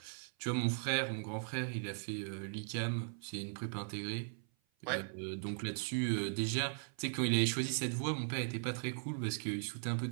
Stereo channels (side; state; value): left; silent; 52 dB below the other